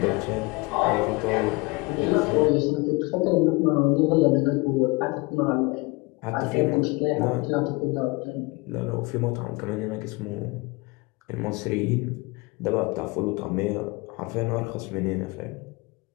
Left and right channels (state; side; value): quieter; right; 25.9 dB